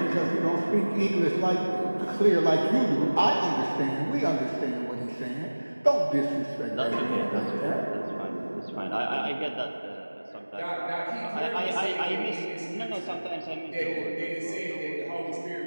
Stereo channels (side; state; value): both; inverted; correlation -1.00